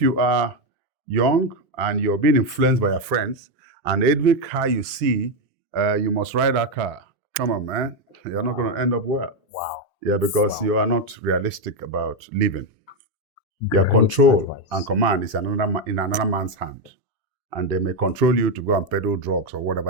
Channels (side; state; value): both; normal; correlation 0.07